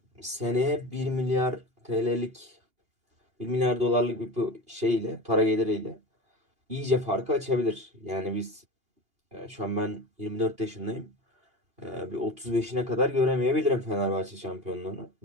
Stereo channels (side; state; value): left; late; 2.8 ms